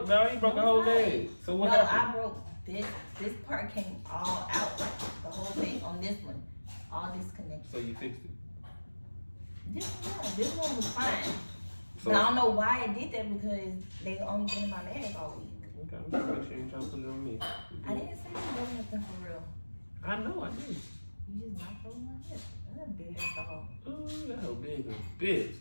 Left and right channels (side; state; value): both; inverted; correlation -1.00